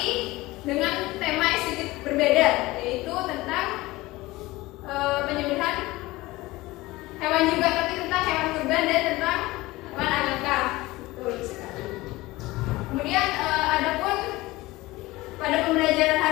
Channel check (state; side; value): quieter; right; 19.8 dB